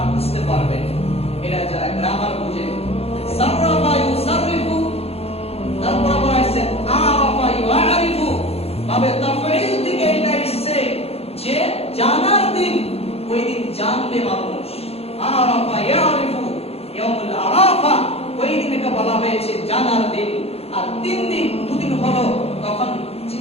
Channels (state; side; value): late; right; 0.29 ms